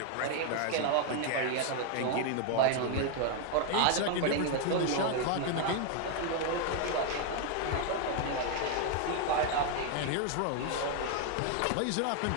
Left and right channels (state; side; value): different; both; correlation 0.00